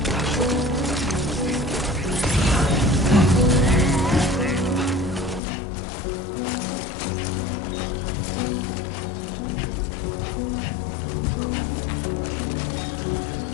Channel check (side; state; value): right; drops out; at 5.4 s